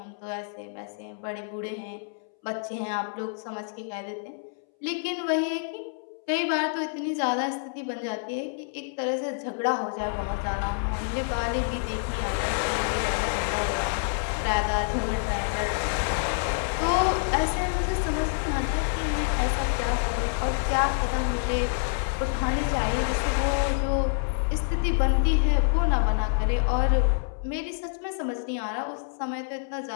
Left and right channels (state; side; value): silent; right; 60 dB below the other